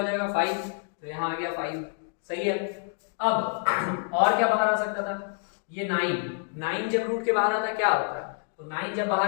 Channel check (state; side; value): silent; right; 57 dB below the other